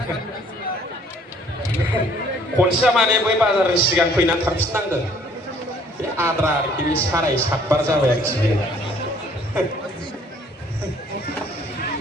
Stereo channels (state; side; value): normal; both; correlation 0.59